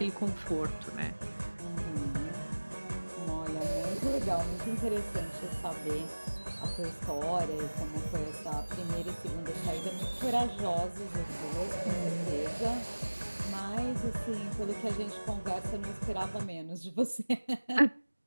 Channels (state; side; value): inverted; both; correlation -1.00